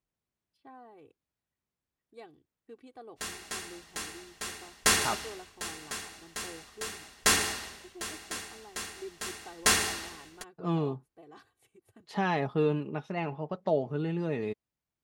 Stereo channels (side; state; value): both; identical; correlation 1.00